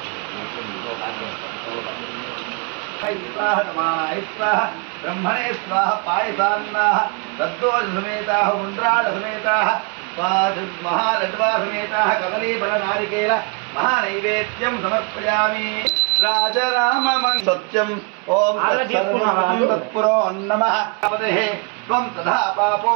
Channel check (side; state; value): left; quieter; 34.3 dB